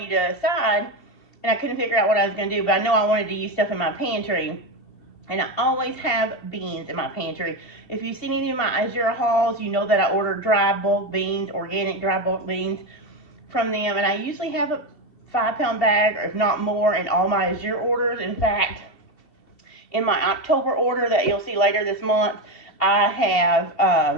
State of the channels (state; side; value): late; right; 2.7 ms